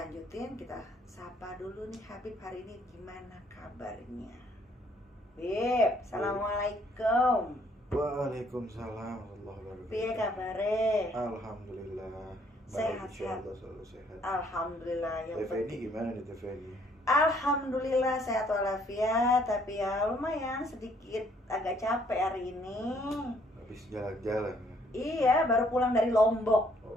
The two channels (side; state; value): both; normal; correlation 0.65